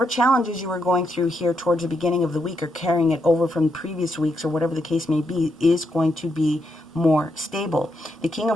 challenges you were going through here towards the beginning of the week, or carrying it over from previous weeks, or whatever the case may be, is going to be more stable. The King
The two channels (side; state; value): both; normal; correlation 0.81